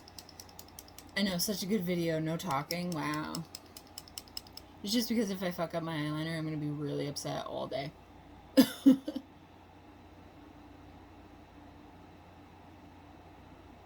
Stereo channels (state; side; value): identical; both; correlation 1.00